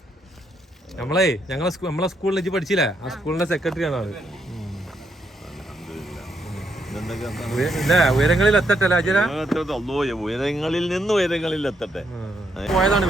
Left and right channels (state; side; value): normal; both; correlation 0.76